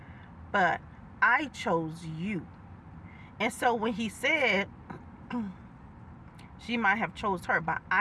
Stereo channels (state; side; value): identical; both; correlation 1.00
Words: but I chose you. And so when he said she might have chose her, but